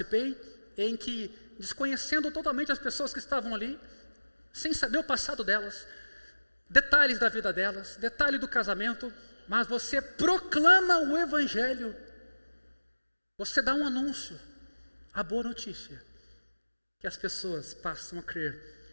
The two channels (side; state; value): both; inverted; correlation -1.00